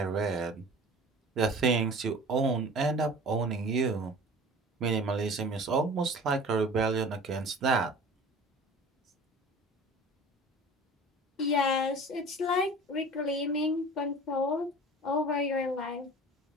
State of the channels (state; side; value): normal; both; correlation 0.41